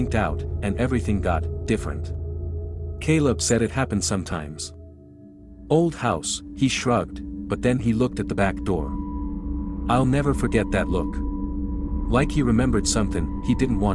out, and everything got different. Caleb said it happened sometimes. Old house, he shrugged, but then he looked at the back door. I'll never forget that look. Like he remembered something he didn't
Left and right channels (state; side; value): identical; both; correlation 1.00